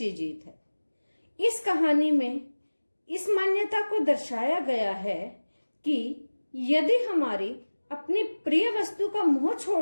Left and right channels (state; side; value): inverted; both; correlation -1.00